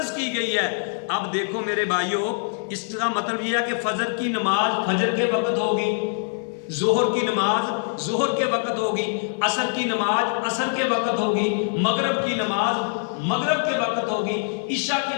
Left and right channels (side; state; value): right; silent; 63 dB below the other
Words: کی گئی ہے۔ اب دیکھو میرے بھائیوں، اس کا مطلب یہ ہے کہ فجر کی نماز فجر کے وقت ہوگی، ظہر کی نماز ظہر کے وقت ہوگی، عصر کی نماز عصر کے وقت ہوگی، مغرب کی نماز مغرب کے وقت ہوگی، عشاء کی